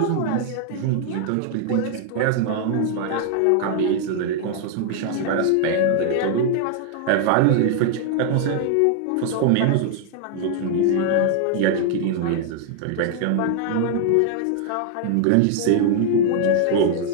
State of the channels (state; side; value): different; both; correlation 0.00